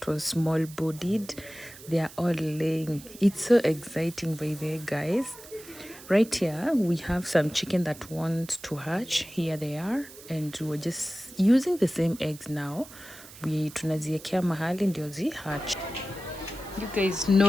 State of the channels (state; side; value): noise; right; hiss, 18 dB below the sound